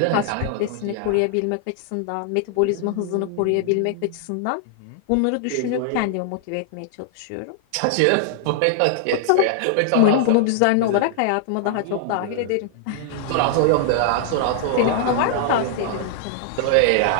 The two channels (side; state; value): both; different; correlation -0.01